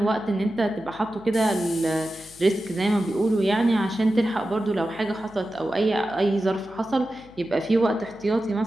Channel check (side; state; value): left; noise; hum, 25 dB below the sound